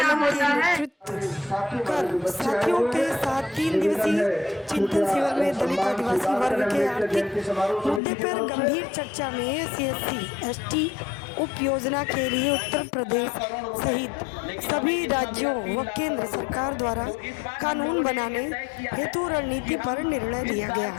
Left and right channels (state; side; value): drops out; right; at 8.0 s